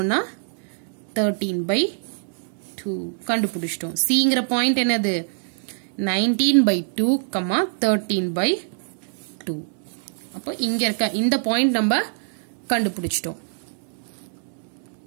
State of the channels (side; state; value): left; silent; digital silence